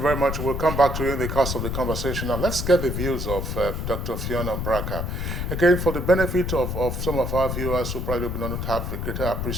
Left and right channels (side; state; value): left; noise; rumble, 3 dB below the sound